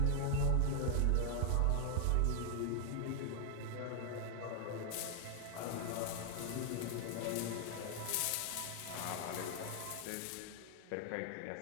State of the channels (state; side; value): different; both; correlation 0.00